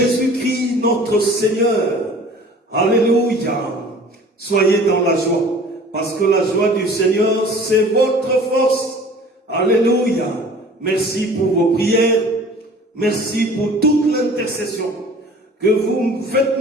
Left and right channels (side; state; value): both; normal; correlation 0.47